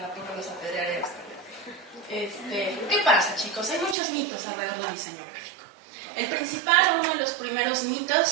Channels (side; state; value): left; drops out; at 4.0 s